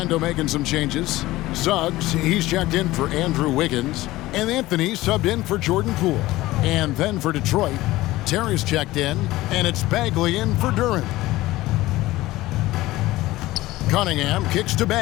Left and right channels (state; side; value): quieter; right; 17.7 dB